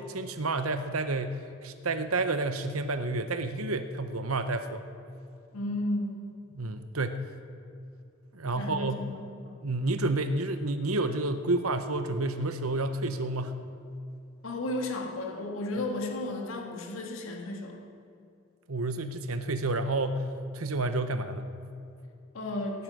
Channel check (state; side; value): normal; both; correlation 0.22